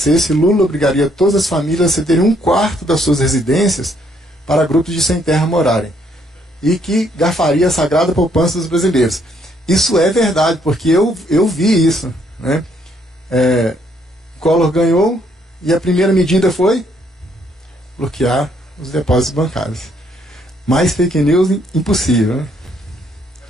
Lula obrigaria todas as famílias a cederem 1/4 das suas residências para grupos de sem terra morarem, e que garfaria a sagrada poupança dos brasileiros. Isso é verdade, porque eu vi isso, né? Collor ganhou e a primeira medida foi bloquear os depósitos bancários. Mais fake news impossível, né?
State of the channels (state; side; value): normal; both; correlation 0.69